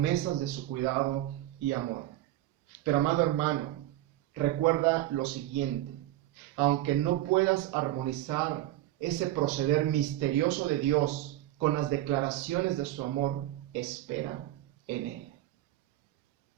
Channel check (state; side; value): quieter; left; 14.8 dB